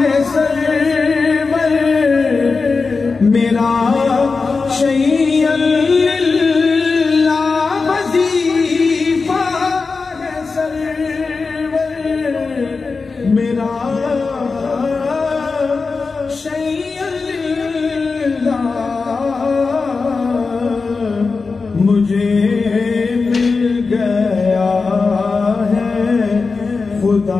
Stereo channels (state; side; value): quieter; right; 4.4 dB